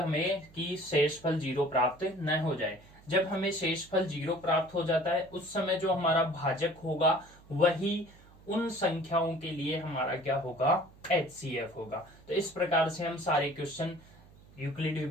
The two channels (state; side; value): noise; right; hum, 24 dB below the sound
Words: कि शेषफल 0 प्राप्त न हो जाए। जब हमें शेषफल 0 प्राप्त हो जाता है, उस समय जो हमारा भाजक होगा वही उन संख्याओं के लिए हमारा क्या होगा, HCF होगा। तो इस प्रकार से हम सारे क्वेश्चन यूक्लिड